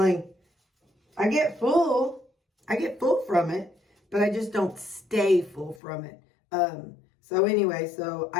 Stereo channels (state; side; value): drops out; right; at 5.8 s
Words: get full. I get full from it, but I just don't stay full from it. So anyway, so